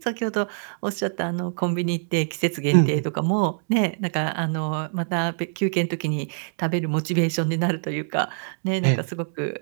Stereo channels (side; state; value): left; silent; digital silence